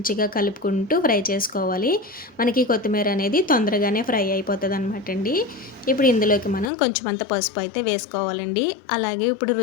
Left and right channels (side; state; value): right; drops out; at 6.7 s